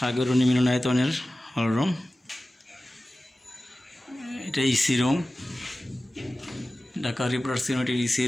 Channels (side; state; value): both; normal; correlation 0.96